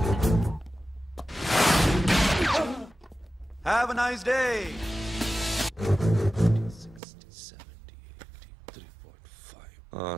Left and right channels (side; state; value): left; drops out; at 7.0 s